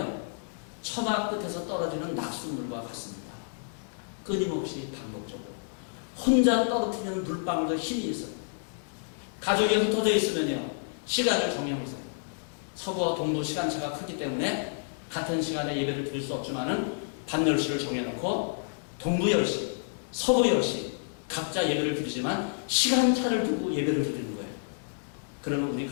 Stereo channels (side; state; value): right; silent; digital silence